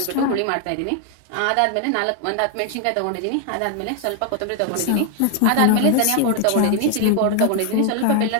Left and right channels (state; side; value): different; both; correlation 0.00